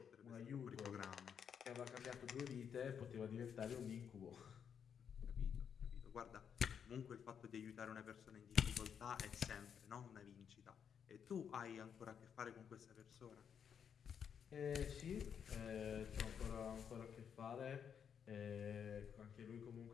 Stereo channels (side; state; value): right; quieter; 7.7 dB